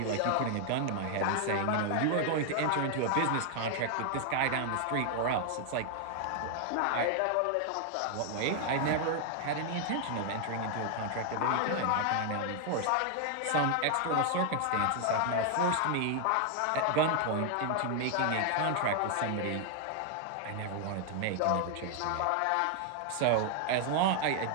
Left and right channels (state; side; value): different; both; correlation 0.00